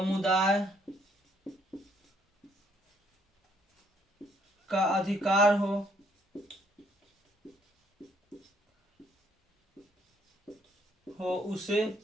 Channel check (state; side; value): normal; both; correlation 0.67